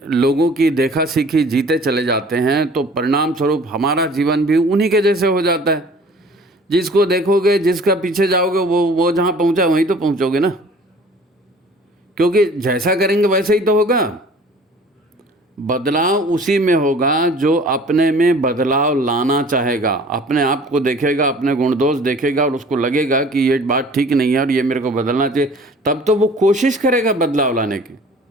लोगों की देखा सीखी जीते चले जाते हैं, तो परिणाम स्वरूप हमारा जीवन भी उन्हीं के जैसे हो जाता है। जिसको देखोगे, जिसका पीछे जाओगे, वो जहाँ पहुँचा वहीं तो पहुँचोगे ना, क्योंकि जैसा करेंगे वैसे ही तो होगा। बदलाव उसी में होगा जो अपने में बदलाव लाना चाहेगा, अपने आप को देखेगा, अपने गुण दोष देखेगा और उसको लगेगा कि ये बात ठीक नहीं है और ये मेरे को बदलना चाहिए, तब तो वो कोशिश करेगा बदलाव लाने की।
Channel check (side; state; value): both; normal; correlation 0.49